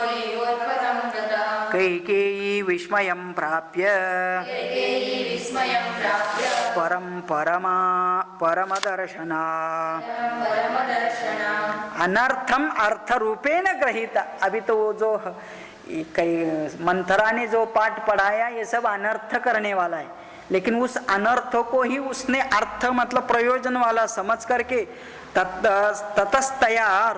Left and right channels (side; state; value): both; identical; correlation 1.00